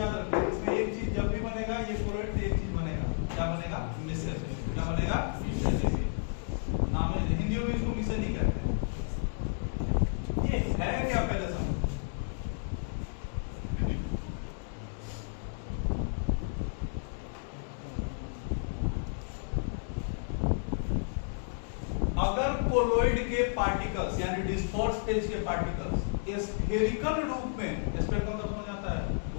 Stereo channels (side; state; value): right; silent; digital silence